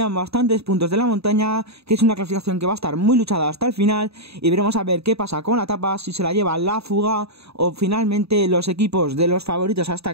bastantes puntos de la montaña, que es una clasificación que va a estar muy luchada hasta el final, y veremos a ver qué pasa con la etapa, si se la lleva la fuga o finalmente los equipos de los favoritos a esta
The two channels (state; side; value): late; left; 0.78 ms